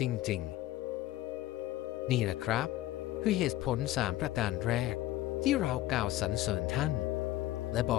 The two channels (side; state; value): right; quieter; 15.4 dB